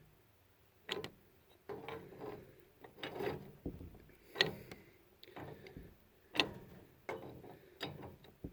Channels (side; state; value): both; identical; correlation 1.00